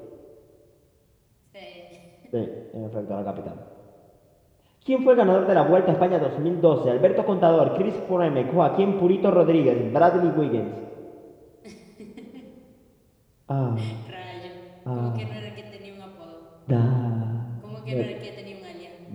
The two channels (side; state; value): both; identical; correlation 1.00